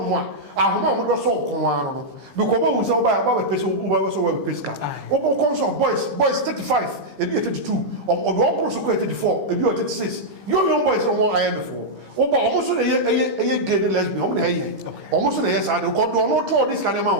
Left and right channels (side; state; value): left; late; 15 ms